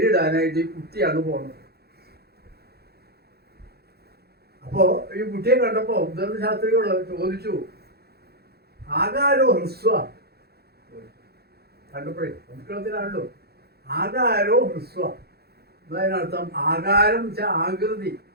ഈ കുട്ടിയാണ് പോണത്. അപ്പോ ഈ കുട്ടിയെ കണ്ടപ്പോ ഉദ്ദണ്ഡ ശാസ്ത്രികൾ ചോദിച്ചു, ആകാരോ ഹ്രസ്വ, കണ്ടപ്പോഴേ സംസ്കൃതത്തിലാണല്ലോ ആകാരോ ഹ്രസ്വ. അതിനർത്ഥം ആകാരം വെച്ചാൽ ആകൃതി,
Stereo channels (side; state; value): left; late; 0.46 ms